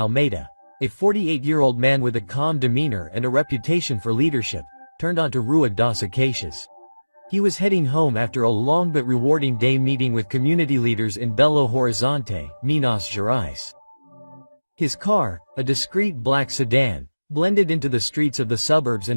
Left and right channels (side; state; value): both; inverted; correlation -1.00